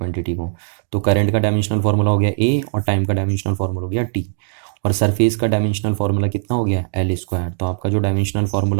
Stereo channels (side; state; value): left; silent; digital silence